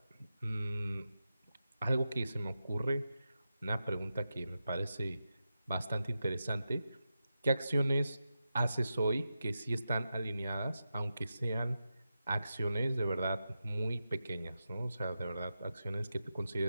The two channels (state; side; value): inverted; both; correlation -0.90